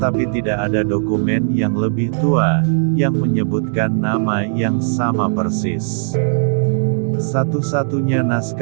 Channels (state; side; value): silent; left; digital silence